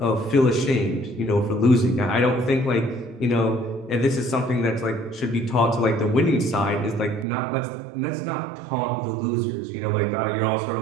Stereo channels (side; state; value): left; drops out; at 7.2 s